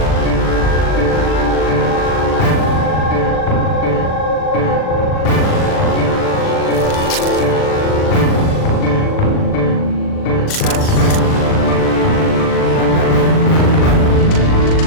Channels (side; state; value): right; late; 39 ms